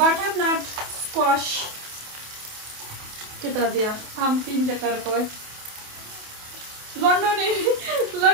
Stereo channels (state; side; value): late; left; 28 ms